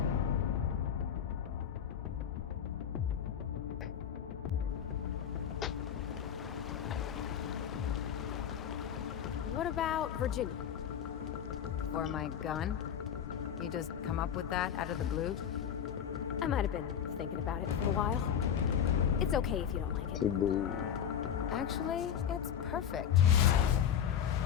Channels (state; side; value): quieter; right; 8.8 dB